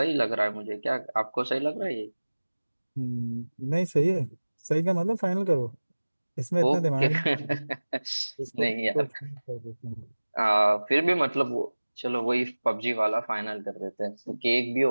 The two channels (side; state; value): both; inverted; correlation -1.00